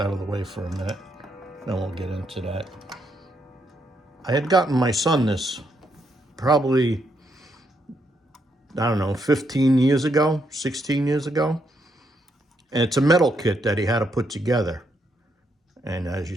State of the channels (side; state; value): both; normal; correlation 0.77